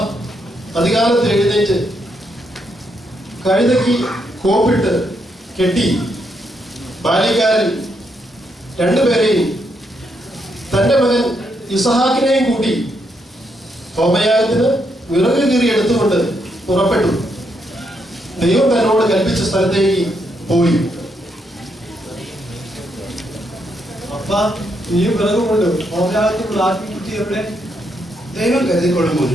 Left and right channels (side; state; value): both; normal; correlation 0.78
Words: അധികാലത്തിൽ എഴുന്നേറ്റ് കഴുതയ്ക്ക് കോപ്പിട്ട് കെട്ടി ബാല്യക്കാരൻ രണ്ടുപേരെയും തന്റെ മകൻ ഇസ്ഹാക്കിനെയും കൂട്ടി ഹോമയാഗത്തിന് വിറക് കീറി എടുത്തുകൊണ്ട് പുറപ്പെട്ടു. ദൈവം തന്നോട് കൽപ്പിച്ച സ്ഥലത്തേക്ക് പോയി. അപ്പ, ഈ വിറകുകൊണ്ട് ഹോമയാഗത്തിനുള്ള ആത്മീയബുദ്ധി എവിടെ? ദൈവം കരുതിക്കൊള്ളും